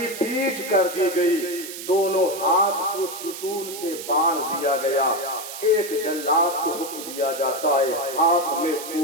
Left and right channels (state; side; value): noise; right; hiss, 10 dB below the sound